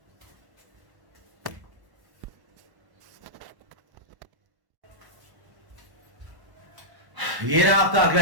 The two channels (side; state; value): left; late; 1.1 ms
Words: ये रहा आपका